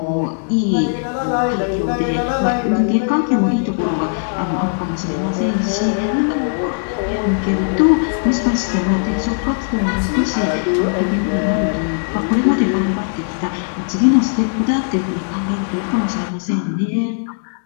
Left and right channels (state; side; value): silent; right; digital silence